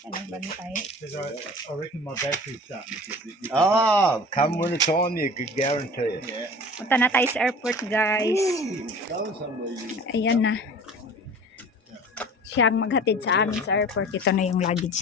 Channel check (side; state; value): both; normal; correlation 0.42